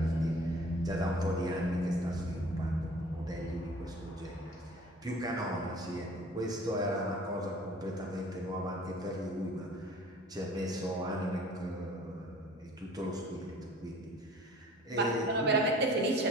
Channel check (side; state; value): both; normal; correlation 0.48